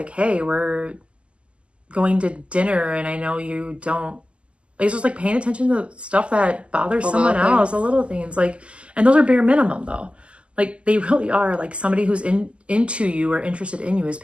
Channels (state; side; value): late; left; 0.055 ms